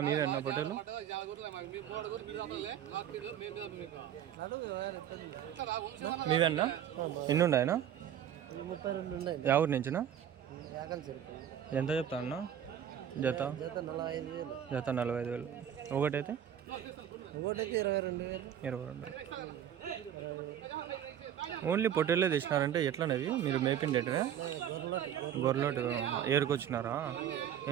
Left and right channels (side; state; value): left; quieter; 9.9 dB